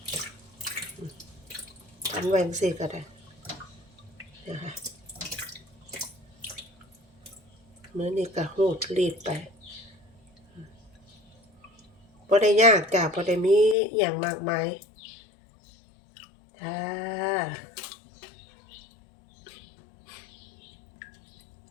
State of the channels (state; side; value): drops out; right; at 13.8 s